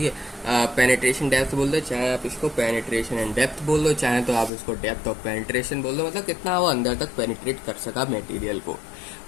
है, पेनिट्रेशन डेप्थ बोल दो, चाहे आप इसको पेनिट्रेशन एंड डेप्थ बोल दो, चाहे तो आप इसको डेप्थ ऑफ पेनिट्रेशन बोल दो, मतलब कितना वो अंदर तक पेनिट्रेट कर सका मटेरियल को,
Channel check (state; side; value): drops out; right; at 4.5 s